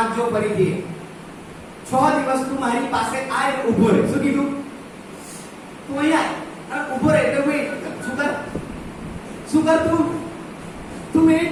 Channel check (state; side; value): identical; both; correlation 1.00